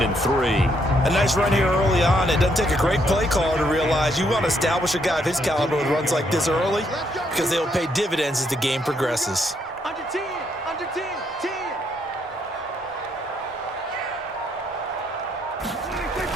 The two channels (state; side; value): normal; both; correlation 0.73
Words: and 3. A nice run here early on. It doesn't take a great play caller to realize you want to establish a guy of his caliber with runs like this early because they will pay dividends as the game progresses. Under 10, under 10, 10.